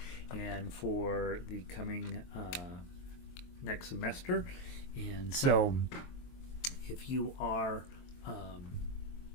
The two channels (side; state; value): right; late; 23 ms